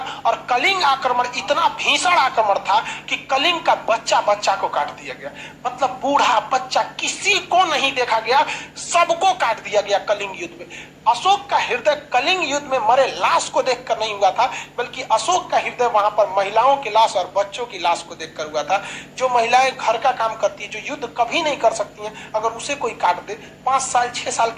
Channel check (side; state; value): both; identical; correlation 1.00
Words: और कलिंग आक्रमण इतना भीषण आक्रमण था कि कलिंग का बच्चा बच्चा को काट दिया गया। मतलब बूढ़ा बच्चा किसी को नहीं देखा गया, सबको काट दिया गया कलिंग युद्ध में। अशोक का हृदय कलिंग युद्ध में मरे लाश को देखकर नहीं हुआ था, बल्कि अशोक का हृदय वहां पर महिलाओं की लाश और बच्चों की लाश को देखकर हुआ था। जो महिलाएं घर का काम करती है, जो युद्ध कभी नहीं कर सकती हैं, अगर उसे कोई काट दे, 5 साल 6 साल